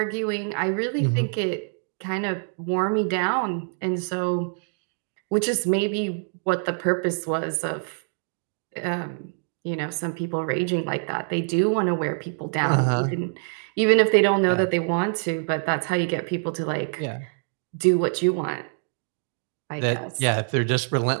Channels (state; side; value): silent; left; 62 dB below the other